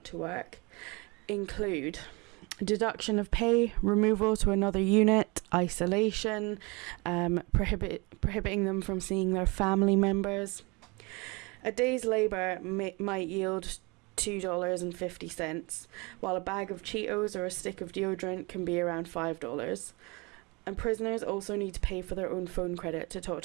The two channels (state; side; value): quieter; left; 27.2 dB